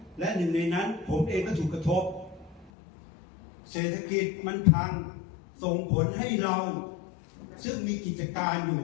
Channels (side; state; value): right; drops out; at 2.7 s